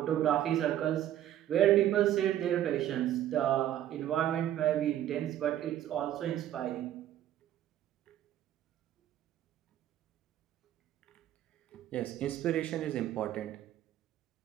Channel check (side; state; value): left; quieter; 12.0 dB